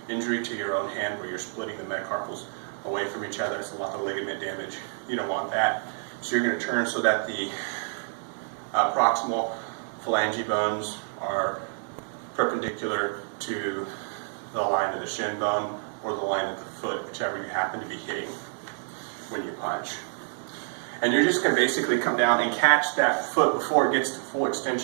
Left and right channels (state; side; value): silent; left; 59 dB below the other